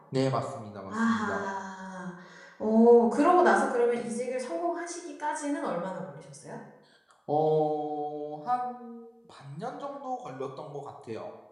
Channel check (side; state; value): both; identical; correlation 1.00